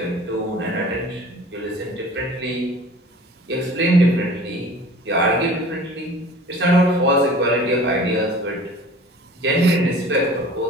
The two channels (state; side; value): normal; both; correlation 0.44